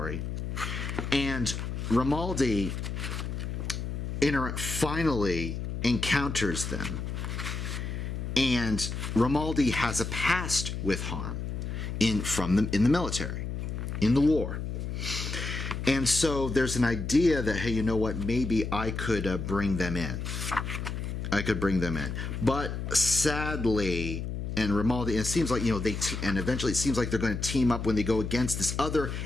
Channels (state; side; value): noise; left; hum, 4 dB below the sound